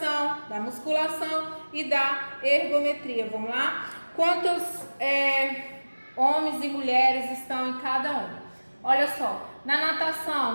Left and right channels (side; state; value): both; inverted; correlation -1.00